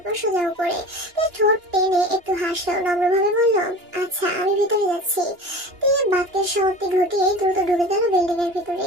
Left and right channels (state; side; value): late; left; 2.9 ms